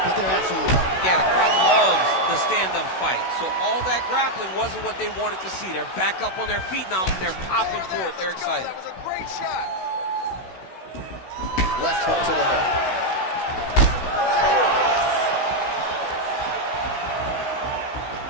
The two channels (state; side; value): late; right; 16 ms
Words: but they're absolutely loving it. Yeah, the crowd loves the stand-up fight. So all that grappling wasn't what they wanted to see. They're back up on their feet now. They're popping for it. They're excited. Left hook to the head.